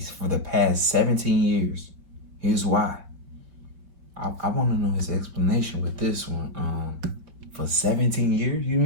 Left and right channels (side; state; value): left; late; 5.3 ms